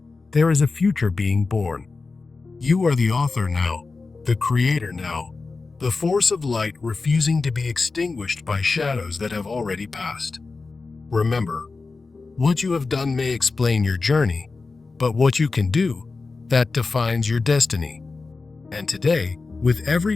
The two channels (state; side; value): quieter; right; 4.0 dB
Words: there is a future being born. You are the author now, the creator now, the force of light refusing to be extinguished by shadows that have already passed. Remember, what you have done may explain your journey, but what you can do, that defines your destiny. And today, with every